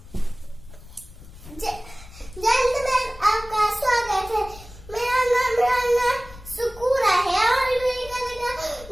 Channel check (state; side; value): noise; left; rumble, 18 dB below the sound